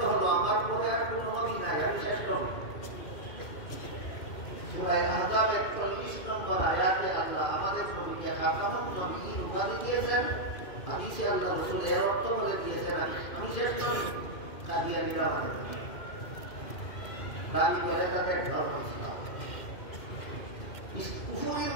হলো আমার পরে আর কোনো নবী নাই, আমি শেষ নবী। সূরা আহজাবের 40 নম্বর আয়াতে আল্লাহ আমাদের নবীকে খাতামুন নাবিয়্যিন উপাধি দিয়েছেন। হাদিসে আল্লাহ রাসূল এর অর্থ বলে দিয়েছেন, আমি শেষ নবী। কাদিয়ানীরা বলে দাবি করে তাদের ধর্ম ইসলাম। কুফরির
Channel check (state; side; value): late; right; 2.2 ms